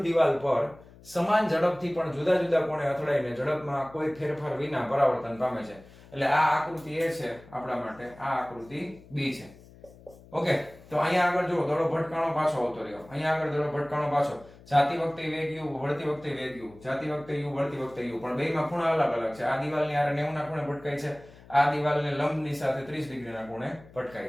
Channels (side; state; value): left; noise; hum, 22 dB below the sound